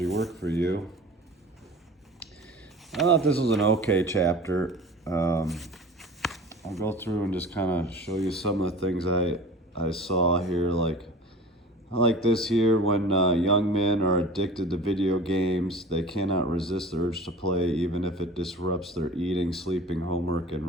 work for you. I thought this was an okay chapter. I'll go through and just kind of show you some of the things I saw here. I like this here. When young men are addicted to video games, they cannot resist the urge to play, even if it disrupts their eating, sleeping, homework,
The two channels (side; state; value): both; normal; correlation 0.39